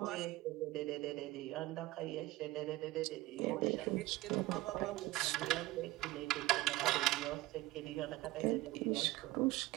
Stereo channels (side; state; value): left; quieter; 18.2 dB